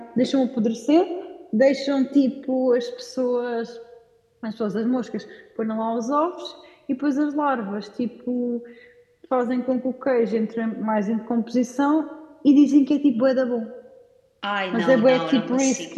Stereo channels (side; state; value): both; identical; correlation 1.00